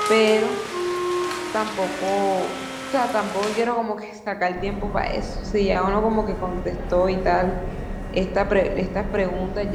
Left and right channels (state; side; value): identical; both; correlation 1.00